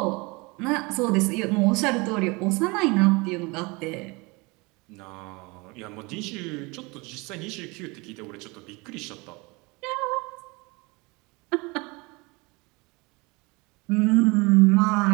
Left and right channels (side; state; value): left; quieter; 26.3 dB